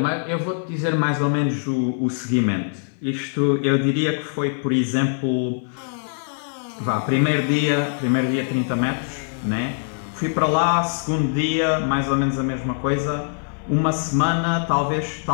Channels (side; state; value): right; silent; 61 dB below the other